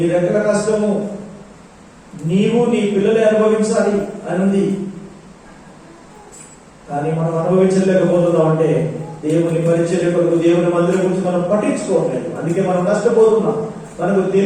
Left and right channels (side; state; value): both; identical; correlation 1.00